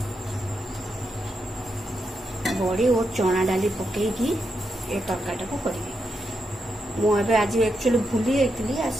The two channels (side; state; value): both; normal; correlation 0.84